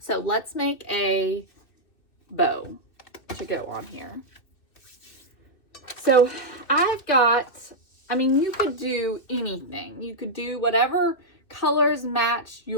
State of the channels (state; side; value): late; right; 2.6 ms